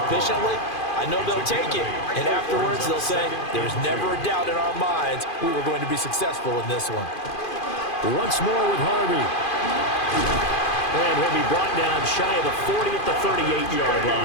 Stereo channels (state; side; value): late; right; 2.5 ms